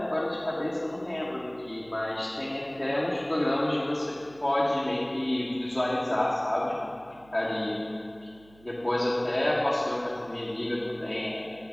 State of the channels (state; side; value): noise; right; hum, 26 dB below the sound